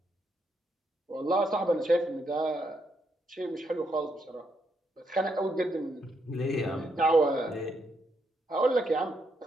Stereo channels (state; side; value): normal; both; correlation 0.78